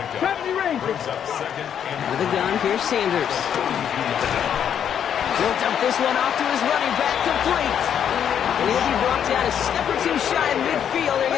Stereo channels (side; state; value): right; quieter; 8.8 dB